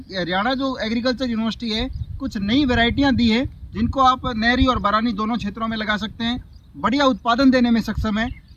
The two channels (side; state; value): both; identical; correlation 1.00